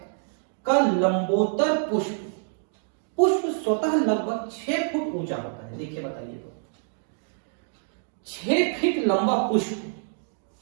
का लंबोत्तर पुष्प, पुष्प स्वतः लगभग 6 फुट ऊंचा होता है। देखिए बताइए तो 6 फीट लंबा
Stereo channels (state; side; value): silent; left; digital silence